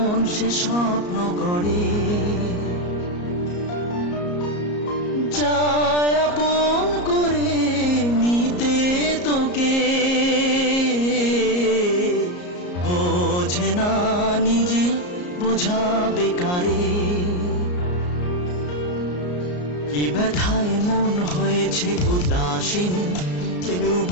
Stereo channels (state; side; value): late; right; 34 ms